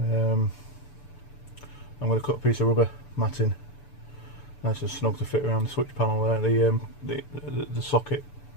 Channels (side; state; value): right; late; 6.9 ms